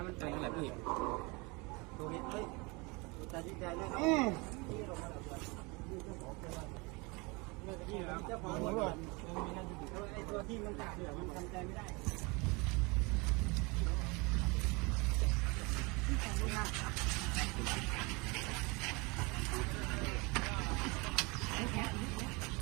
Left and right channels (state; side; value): quieter; left; 27.2 dB